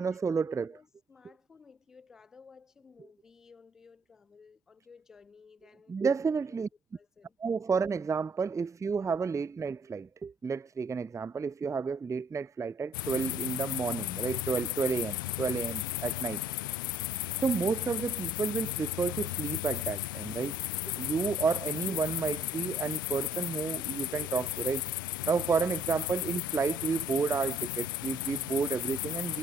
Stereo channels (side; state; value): both; normal; correlation 0.61